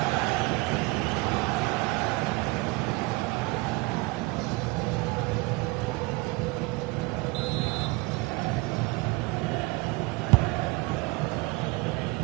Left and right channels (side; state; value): left; quieter; 24.2 dB